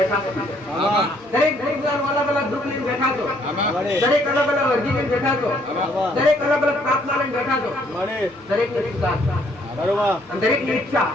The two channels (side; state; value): both; normal; correlation 0.66